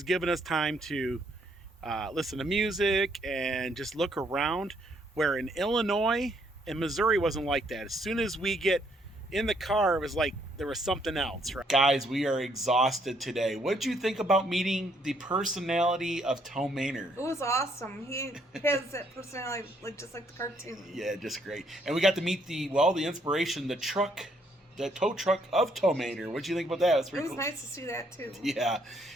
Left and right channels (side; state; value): both; normal; correlation 0.69